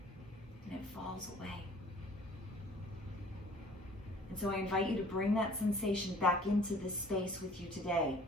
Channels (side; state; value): both; normal; correlation 0.51